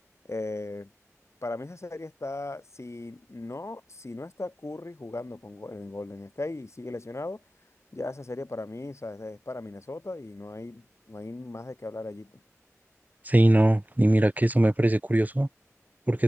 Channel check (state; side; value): normal; both; correlation 0.97